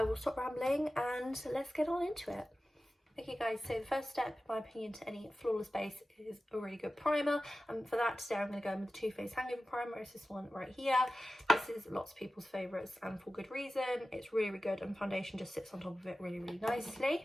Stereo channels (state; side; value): normal; both; correlation 0.95